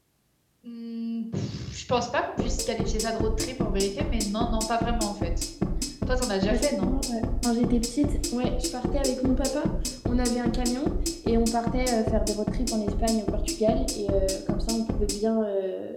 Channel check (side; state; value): both; identical; correlation 1.00